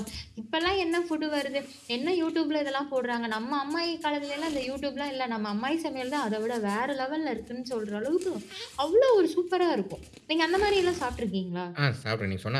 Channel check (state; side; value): identical; both; correlation 1.00